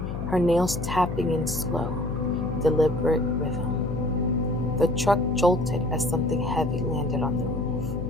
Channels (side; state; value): left; noise; hum, 5 dB below the sound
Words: her nails tapping in slow, deliberate rhythm. The truck jolted as something heavy landed on the